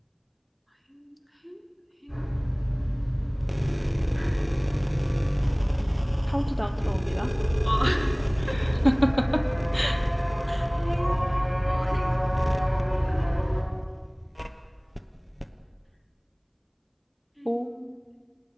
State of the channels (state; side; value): identical; both; correlation 1.00